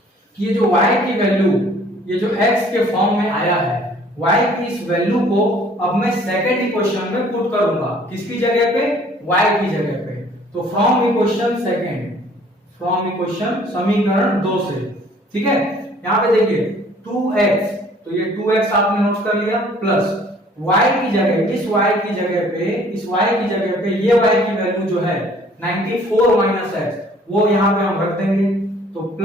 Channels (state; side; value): normal; both; correlation 0.56